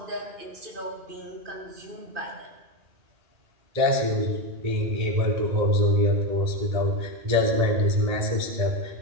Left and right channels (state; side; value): late; left; 1.8 ms